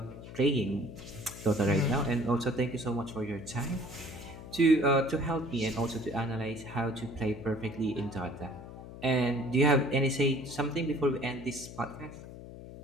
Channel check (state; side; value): noise; left; hum, 13 dB below the sound